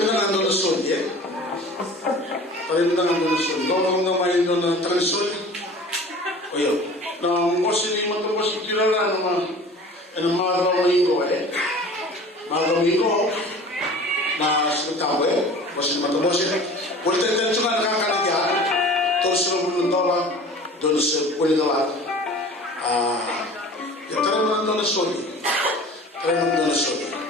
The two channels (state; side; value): normal; both; correlation 0.42